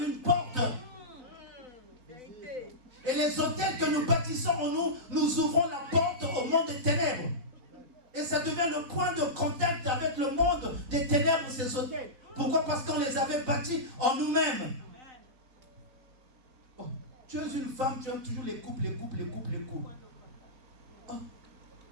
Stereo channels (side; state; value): left; late; 3.9 ms